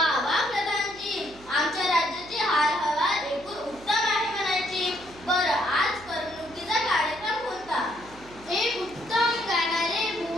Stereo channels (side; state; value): right; noise; hum, 21 dB below the sound